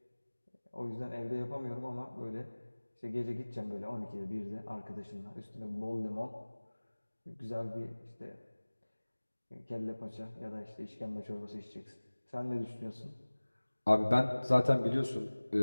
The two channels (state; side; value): inverted; both; correlation -1.00